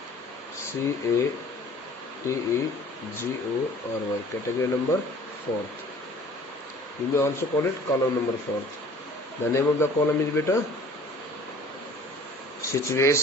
CATEGORY. Category number 4th. You may also call it column number 4th. The name of the column is beta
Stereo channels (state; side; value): normal; both; correlation 0.49